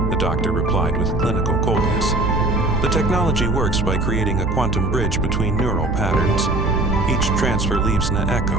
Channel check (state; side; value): noise; right; hum, 2 dB below the sound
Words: the doctor replied with clinical coldness. "The technology works by creating a quantum bridge between neural patterns. Each transfer leaves an